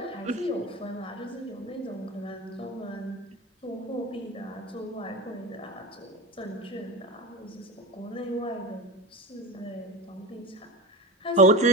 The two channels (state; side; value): normal; both; correlation 0.26